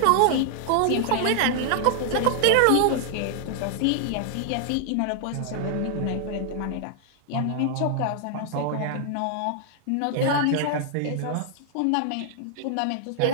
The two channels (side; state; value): both; different; correlation 0.00